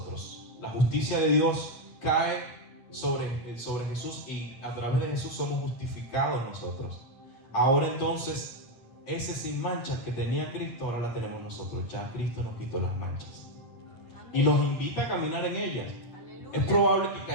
La justicia de Dios cae sobre Jesús y a través de Jesús somos justificados nosotros. Ahora entonces, ese sin mancha que tenía Cristo, ahora la tenemos nosotros. Ya Cristo nos quitó las manchas. Y nos invita a caminar en ellas. Es probable que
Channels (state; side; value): late; right; 8.7 ms